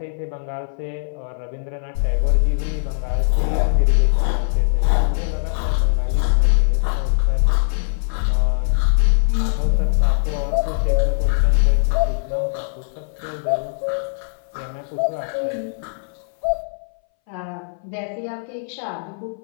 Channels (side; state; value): right; silent; 63 dB below the other